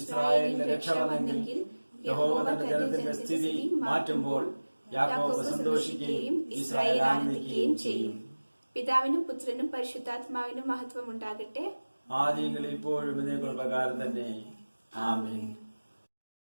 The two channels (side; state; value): both; inverted; correlation -1.00